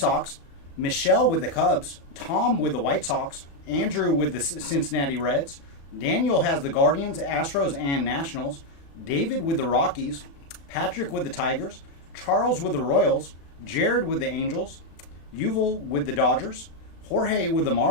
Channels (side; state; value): right; late; 36 ms